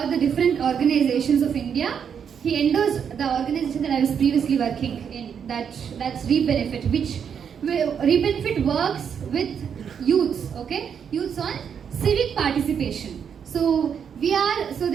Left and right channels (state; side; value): quieter; left; 7.5 dB